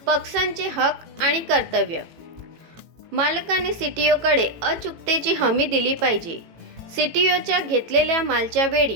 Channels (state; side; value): late; left; 18 ms